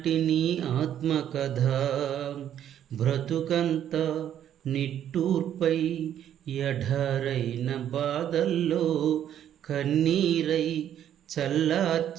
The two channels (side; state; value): left; quieter; 10.4 dB